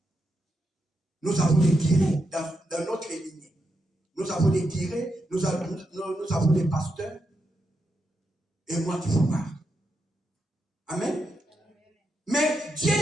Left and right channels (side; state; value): both; normal; correlation 0.84